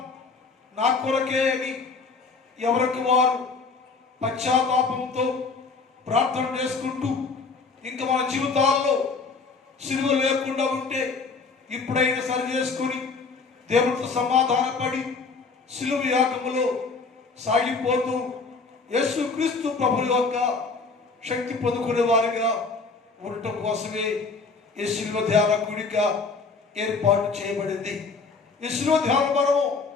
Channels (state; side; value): quieter; right; 4.4 dB